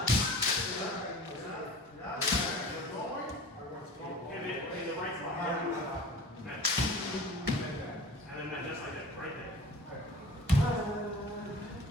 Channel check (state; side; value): normal; both; correlation 0.41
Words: And then just like that, right there.